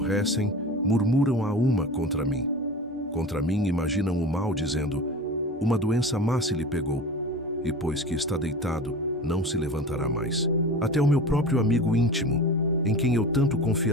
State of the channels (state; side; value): normal; both; correlation 0.33